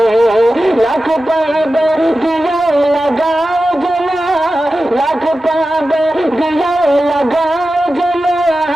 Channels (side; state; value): both; normal; correlation 0.93